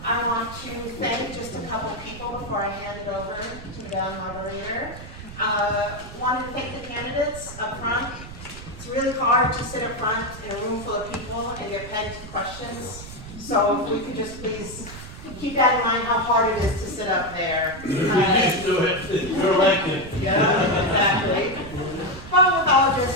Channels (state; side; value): noise; right; rumble, 14 dB below the sound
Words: I want to thank just a couple people before I hand it over to Madame Moderator. Wanted to thank the candidates up front. It's really hard to sit up front in a room full of people and get pegged questions. So if we could just please keep that in mind, how hard it is to sit up there. You just do it. You're elected. Yeah, exactly. But with all